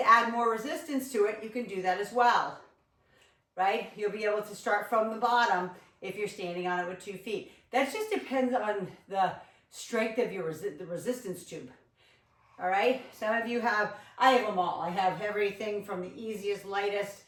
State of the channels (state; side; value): identical; both; correlation 1.00